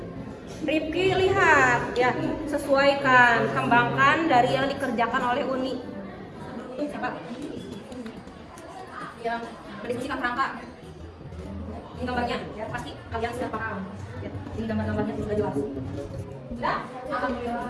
Rifki lihat ya, sesuaikan, kembangkan dari yang dikerjakan oleh Uni. Siapa? Yang mendiskusikan kerangka. Ini gambarnya ya, pasti kalian sudah paham. Ya, ini gambar-gambarnya sudah jelas. Sudah?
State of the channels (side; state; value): both; identical; correlation 1.00